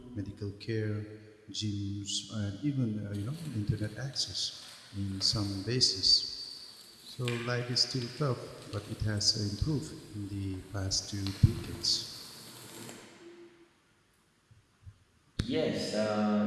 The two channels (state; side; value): identical; both; correlation 1.00